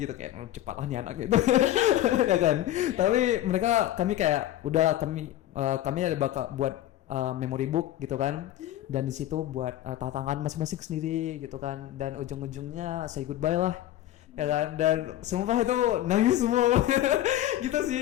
kayak cepat lah nih anak gitu. Ya kan, tapi kami kayak udah, kami ada bakal buat memory book gitu kan, dan di situ buat tantangan masing-masing sendiri gitu kan, dan ujung-ujungnya say goodbye lah ya kan, dan sumpah itu nangis semua. Gitu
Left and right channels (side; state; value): right; quieter; 13.4 dB